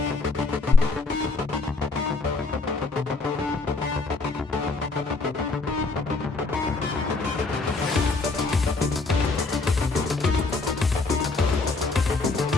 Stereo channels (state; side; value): quieter; right; 3.7 dB